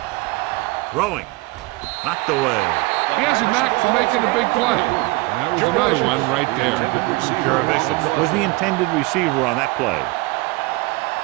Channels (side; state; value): left; quieter; 23.5 dB